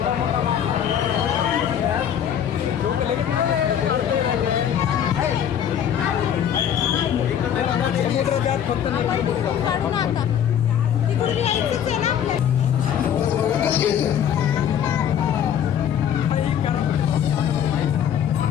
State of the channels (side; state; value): right; quieter; 9.3 dB